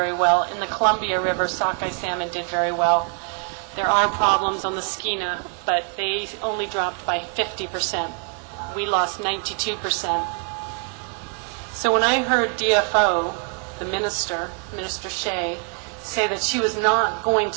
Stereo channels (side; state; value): left; quieter; 39.4 dB